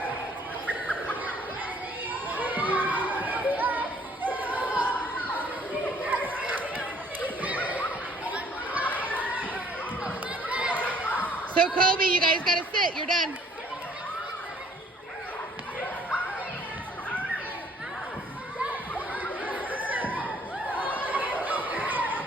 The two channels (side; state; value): both; normal; correlation 0.59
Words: So Kobe, you guys gotta sit, you're done.